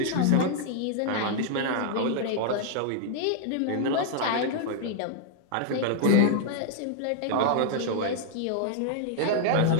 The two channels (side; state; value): both; different; correlation 0.00